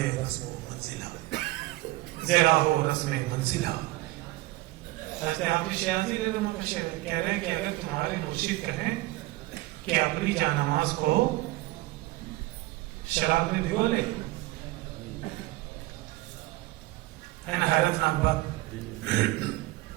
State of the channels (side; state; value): left; quieter; 19.5 dB